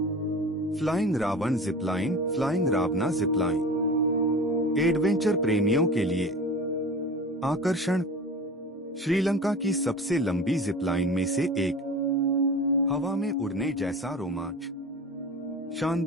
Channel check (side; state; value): both; normal; correlation 0.35